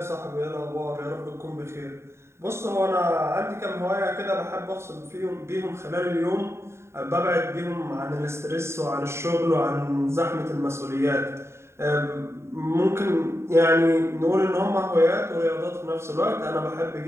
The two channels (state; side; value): late; left; 0.13 ms